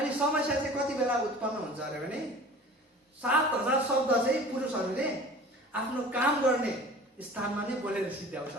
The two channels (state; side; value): normal; both; correlation 0.43